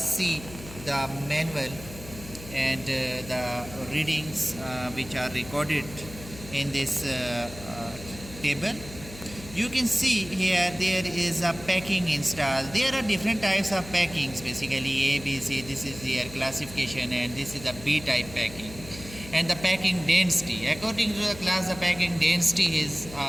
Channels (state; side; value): noise; left; hum, 15 dB below the sound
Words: the manual and the readings which are recorded in this table. You can see here there is a packing installed. There are different types of packings, basically A, B, C. This is their classification, and this is a B type packing. And the packing density, according to the class, the packing density is